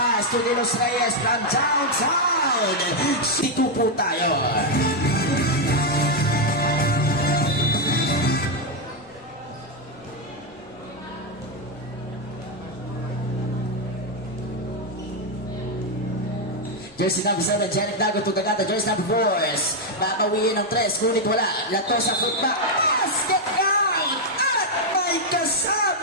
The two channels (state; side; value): normal; both; correlation 0.02